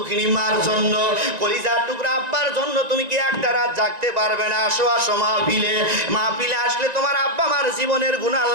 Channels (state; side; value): late; left; 1.9 ms